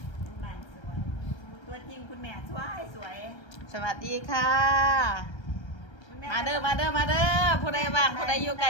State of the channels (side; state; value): right; late; 1.3 ms